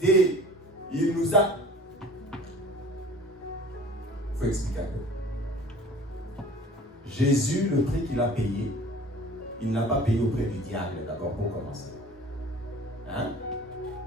Il nous a... Il faut expliquer un peu. Jésus, le prix qu'il a payé, il n'a pas payé auprès du diable d'abord pour commencer. Hein?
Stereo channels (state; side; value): normal; both; correlation 0.46